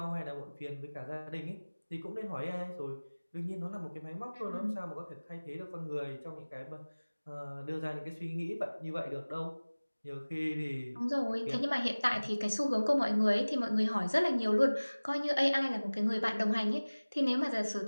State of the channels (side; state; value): both; inverted; correlation -1.00